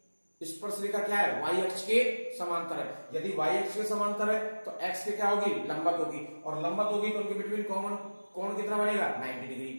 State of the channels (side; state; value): both; inverted; correlation -1.00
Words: स्पर्श रेखा क्या है? y अक्ष के समांतर है। यदि y अक्ष के समांतर है तो x के क्या होगी? लंबवत होगी, और लंबवत होगी तो उनके बिटवीन कॉमन कोण कितना बनेगा? 90 डिग्री,